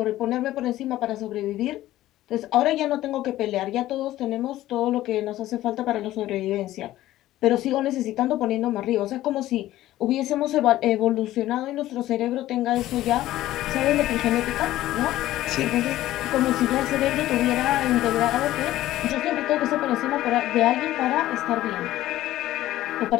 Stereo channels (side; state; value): right; quieter; 14.8 dB